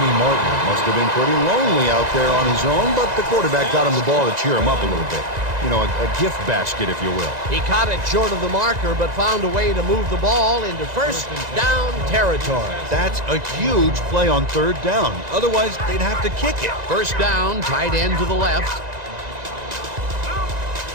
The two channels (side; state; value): left; late; 1.9 ms